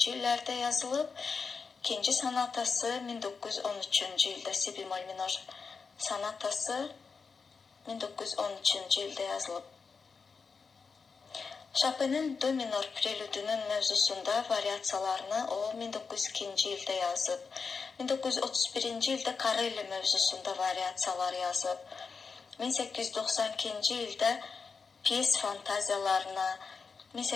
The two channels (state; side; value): quieter; right; 5.1 dB